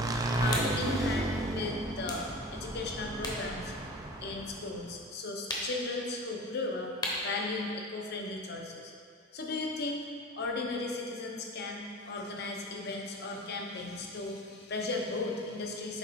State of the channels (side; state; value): both; normal; correlation 0.34